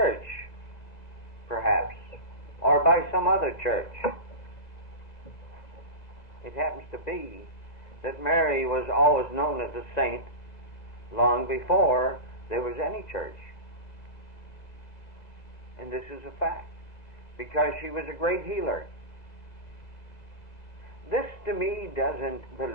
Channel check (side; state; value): right; late; 2.3 ms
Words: perhaps, or by some other church. It happens to be that Mary was always known as a saint long before there was any church. And this is a fact, because she was a great healer. This to me doesn't